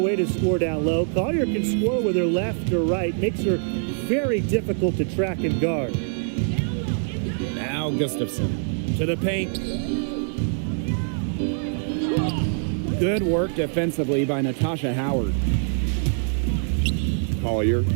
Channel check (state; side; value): silent; left; 63 dB below the other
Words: to score down low. Collier can score with her left or right. Makes her very difficult to track and guard. Now Gustafson to the paint. Good work defensively by Natasha Howard. Collier.